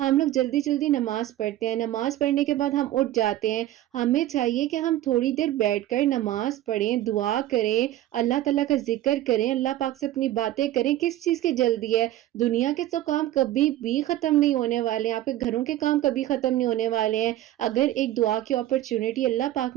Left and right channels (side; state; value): left; quieter; 14.0 dB